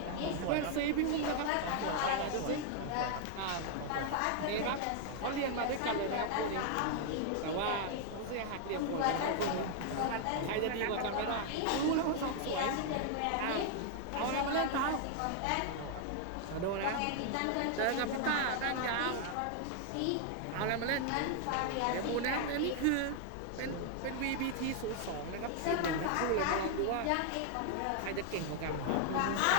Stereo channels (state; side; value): different; both; correlation 0.00